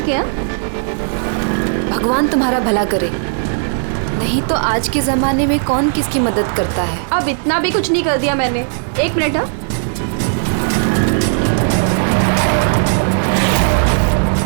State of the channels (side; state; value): left; silent; digital silence